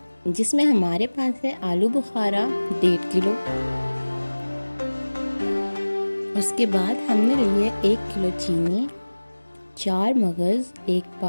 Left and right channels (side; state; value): both; inverted; correlation -1.00